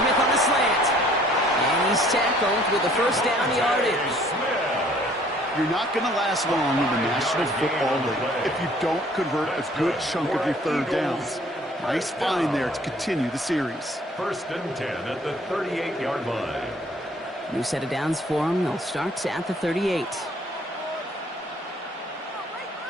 on the slant. And he's tackled with the first down yardage. You're not going to last long in the National Football League if you don't convert a good chunk of your 3rd downs. Nice find there to continue the series. 1st and 10 at the 38-yard line. New set of downs for him. They'll start at the 38.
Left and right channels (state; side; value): normal; both; correlation 0.58